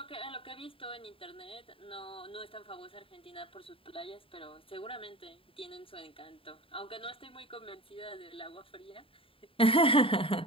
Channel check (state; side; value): late; right; 0.26 ms